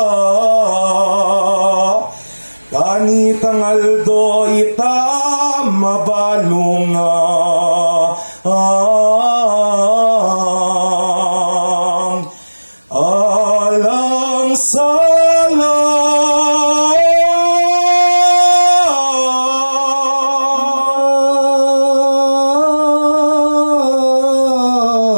kanitang aldo ita mabalunga alang sala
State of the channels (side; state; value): both; inverted; correlation -1.00